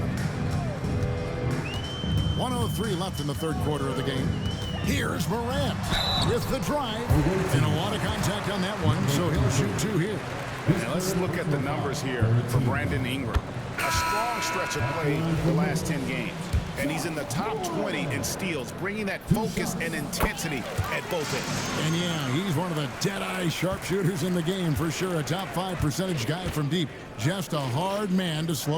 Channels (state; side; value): identical; both; correlation 1.00